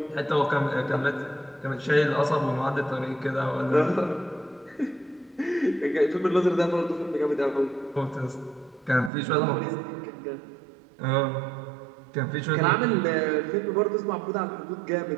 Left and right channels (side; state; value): left; drops out; at 9.1 s